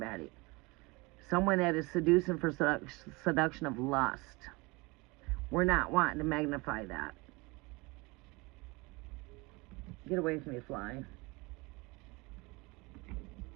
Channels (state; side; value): quieter; left; 25.2 dB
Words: Someone that is seducing for seduction of lust. We're not wanting to magnify that. Get away from me, fly.